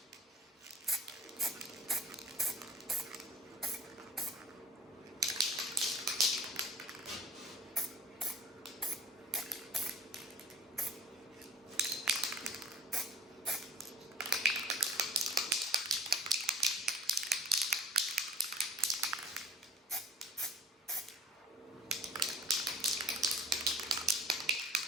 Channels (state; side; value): normal; both; correlation 0.49